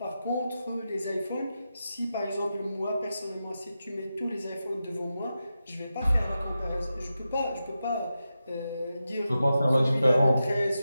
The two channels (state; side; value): inverted; both; correlation -0.90